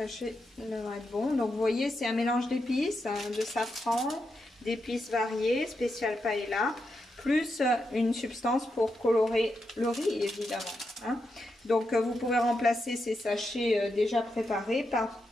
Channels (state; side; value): normal; both; correlation 0.85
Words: devraient être bon. Donc vous voyez, c'est un mélange d'épices, de safran, d'épices variées, spécial paella, plus une substance pour colorer le riz évidemment. Hein. Donc vous pouvez remplacer ces sachets déjà préparés par